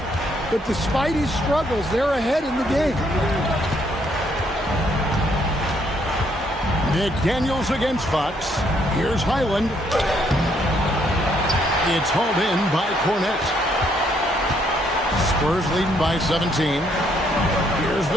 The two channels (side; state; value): both; normal; correlation 0.70